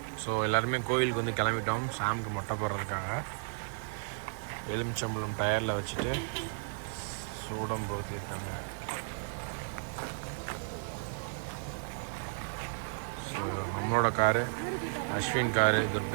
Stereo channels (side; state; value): left; silent; digital silence